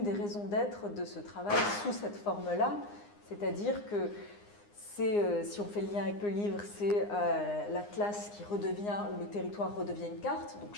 raisons d'être de ce travail sous cette forme-là. C'est-à-dire que si on fait le lien avec le livre, c'est l'atlas qui redevient, où le territoire redevient une carte, donc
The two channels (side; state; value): right; late; 9.7 ms